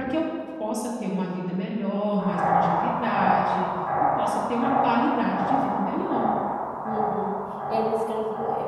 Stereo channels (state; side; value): identical; both; correlation 1.00